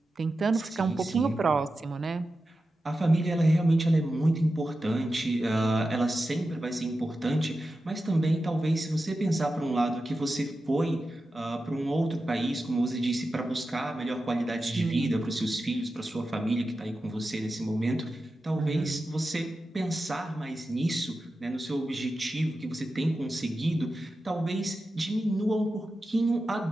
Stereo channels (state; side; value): normal; both; correlation 0.92